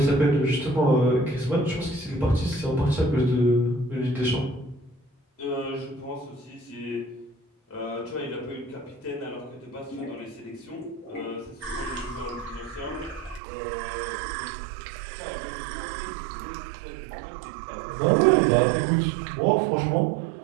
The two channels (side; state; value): left; drops out; at 13.4 s